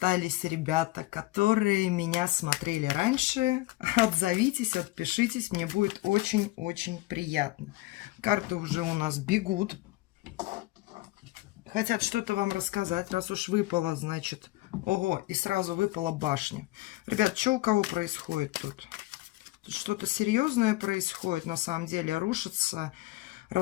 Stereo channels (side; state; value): right; quieter; 19.2 dB